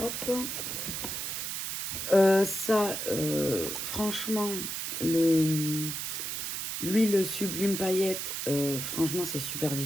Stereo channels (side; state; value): right; noise; hiss, 4 dB below the sound